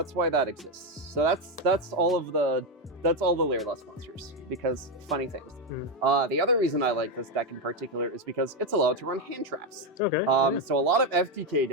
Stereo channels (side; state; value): both; normal; correlation 0.07